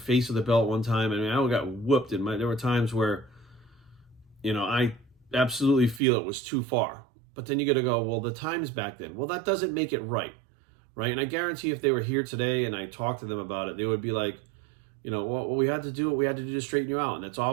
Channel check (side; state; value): left; drops out; at 6.0 s